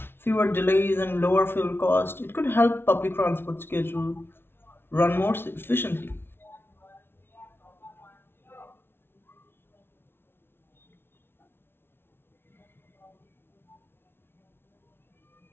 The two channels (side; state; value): right; late; 0.11 ms